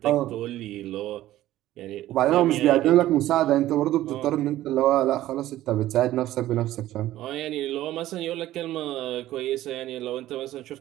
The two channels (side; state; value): left; quieter; 14.6 dB